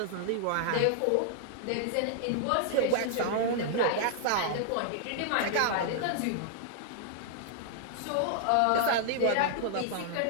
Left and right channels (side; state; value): both; different; correlation -0.01